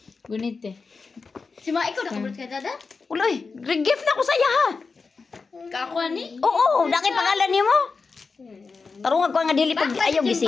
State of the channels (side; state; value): right; quieter; 4.6 dB